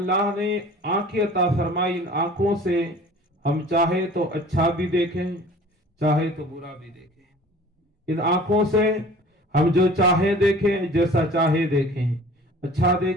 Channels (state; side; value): normal; both; correlation 0.46